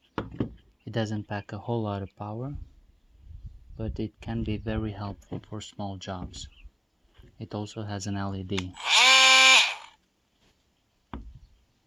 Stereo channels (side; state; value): both; identical; correlation 1.00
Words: It doesn't pack a whole lot of power, but it can be very helpful for small jobs. It also has an LED.